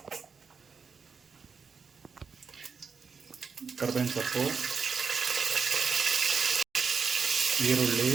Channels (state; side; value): quieter; left; 5.6 dB